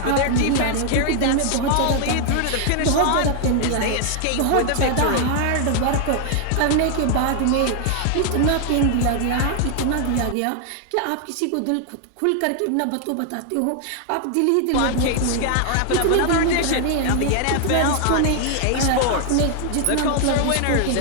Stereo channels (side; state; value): both; different; correlation 0.00